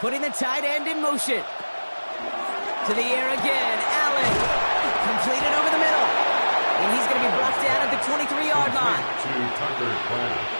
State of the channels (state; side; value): inverted; both; correlation -1.00